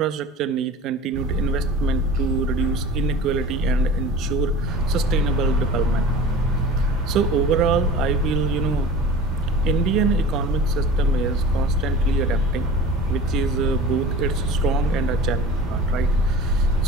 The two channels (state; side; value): normal; both; correlation 0.39